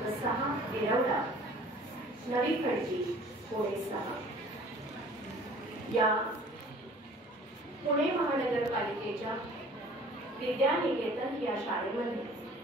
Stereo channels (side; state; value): both; normal; correlation 0.49